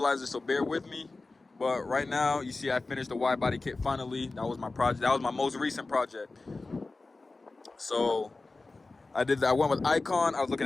so bear with me. But right now, you see I finished the Widebody Kit finally. That was my project. That was my most recent project. So I did that. I went with Icon. I was looking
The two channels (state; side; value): quieter; right; 3.4 dB